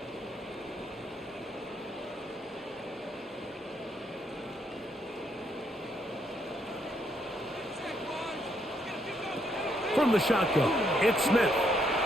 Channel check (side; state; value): both; normal; correlation 0.73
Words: From the shotgun, it's Smith.